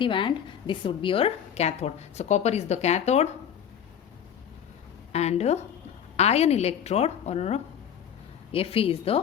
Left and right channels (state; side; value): quieter; right; 8.8 dB